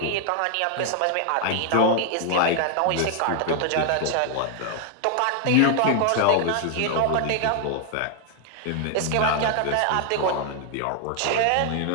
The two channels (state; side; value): different; both; correlation 0.00